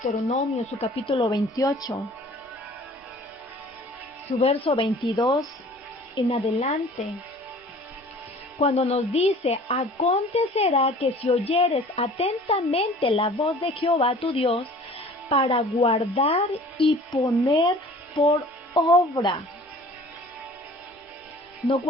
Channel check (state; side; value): normal; both; correlation 0.48